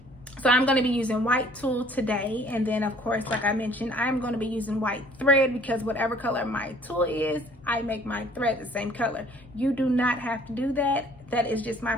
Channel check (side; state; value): both; normal; correlation 0.56